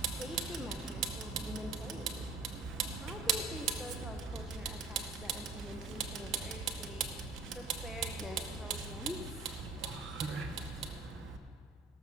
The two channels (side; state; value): left; quieter; 4.0 dB